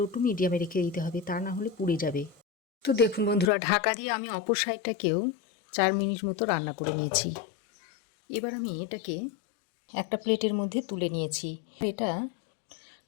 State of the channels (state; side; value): drops out; right; at 3.5 s